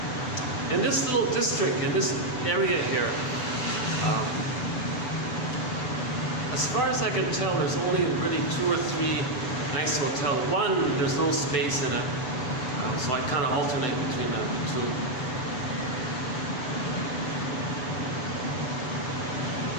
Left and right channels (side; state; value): right; late; 8.0 ms